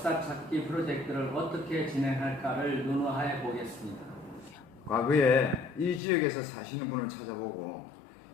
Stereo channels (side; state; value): right; drops out; at 6.0 s